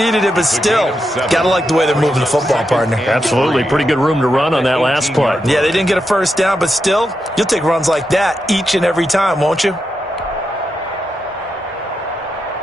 it, but still, gotta like the way they're moving the football, partner. Absolutely. Pretty good room to run on that last play. Yeah, they didn't get a 1st down, but still, you'll take runs like that each and every time, won't you?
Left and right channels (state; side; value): normal; both; correlation 0.86